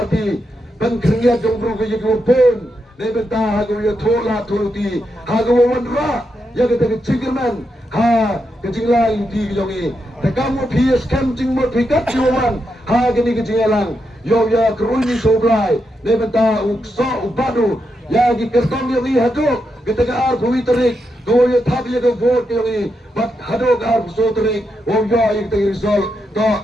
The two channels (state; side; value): normal; both; correlation 0.84